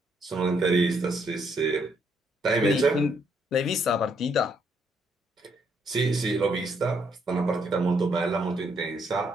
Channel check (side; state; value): both; normal; correlation 0.72